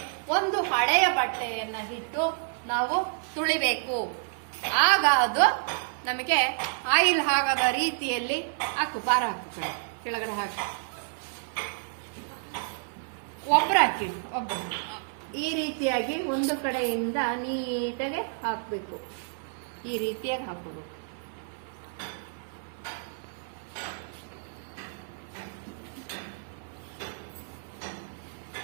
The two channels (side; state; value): left; silent; 58 dB below the other